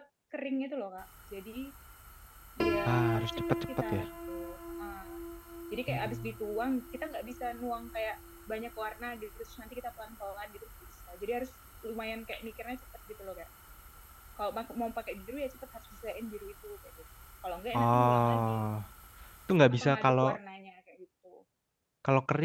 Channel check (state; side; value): identical; both; correlation 1.00